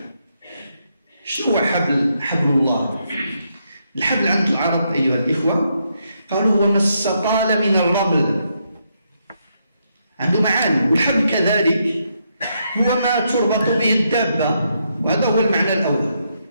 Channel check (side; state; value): both; inverted; correlation -0.78